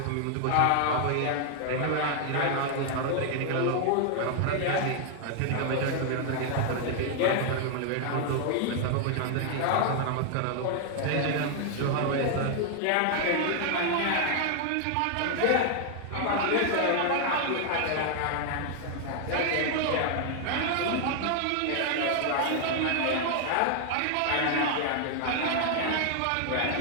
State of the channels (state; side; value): different; both; correlation 0.00